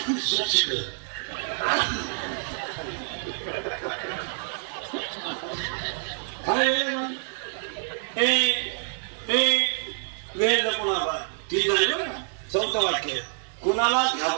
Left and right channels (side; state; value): left; silent; 60 dB below the other